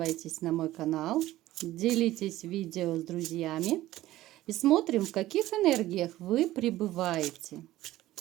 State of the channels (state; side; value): quieter; left; 15.5 dB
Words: на мой канал, делитесь видео с друзьями и смотрим, в каких энергиях вы пребываете.